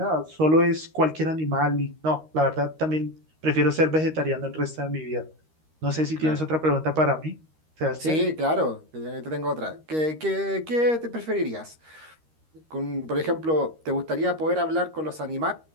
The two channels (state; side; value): late; left; 13 ms